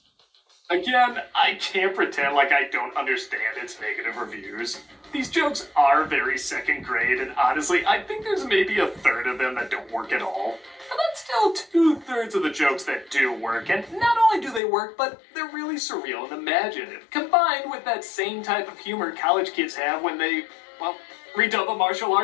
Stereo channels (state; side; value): drops out; right; at 14.6 s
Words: Again, I can't pretend like I don't understand its negative reviews. These jokes are very second grade, and honestly, I think there's maybe a third of them that don't work at all. But that's still 2/3 of the jokes that do work, and not only do they work, but they're really surreal and imaginative, combined with that same type of humor college kids have when they, well, redub a martial